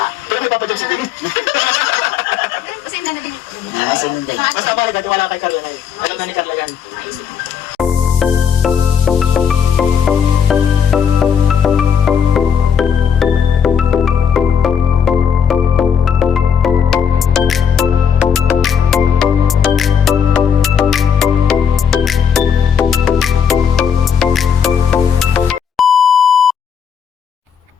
Pero may Papa Jones din. Kasi hindi na din. Basta mahalaga, tiwala kay Carla na yun. Alam na ni Carla yan. Maisip.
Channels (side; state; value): right; quieter; 7.3 dB